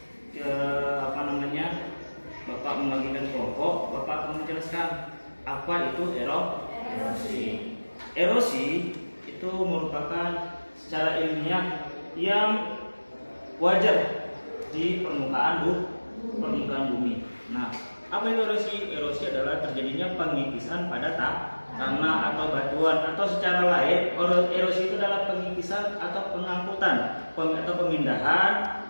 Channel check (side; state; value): both; inverted; correlation -1.00